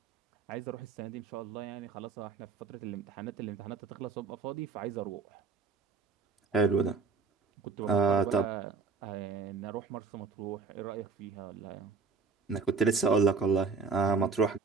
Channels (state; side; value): quieter; left; 4.7 dB